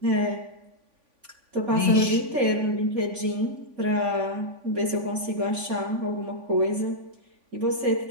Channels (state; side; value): late; left; 3.5 ms